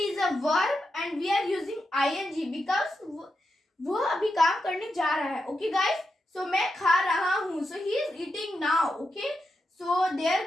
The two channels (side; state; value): both; normal; correlation 0.87